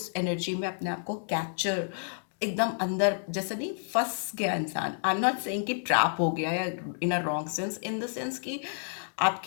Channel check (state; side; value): silent; right; digital silence